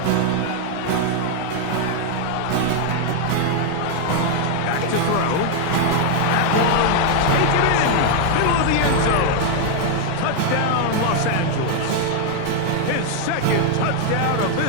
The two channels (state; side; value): different; both; correlation 0.00